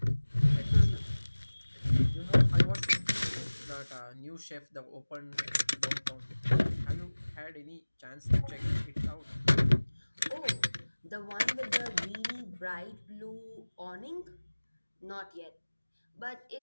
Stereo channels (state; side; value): inverted; both; correlation -1.00